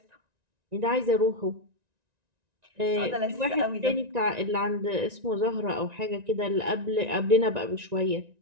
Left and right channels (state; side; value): late; left; 1.9 ms